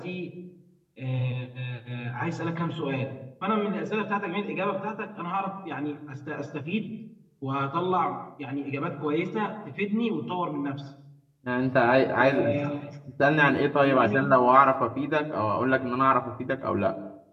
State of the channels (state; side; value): identical; both; correlation 1.00